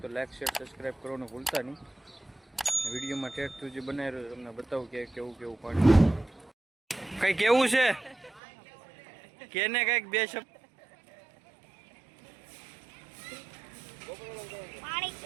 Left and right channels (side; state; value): left; drops out; at 8.4 s